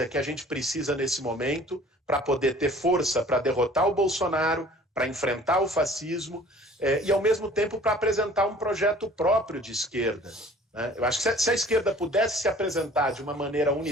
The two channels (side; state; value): both; normal; correlation 0.50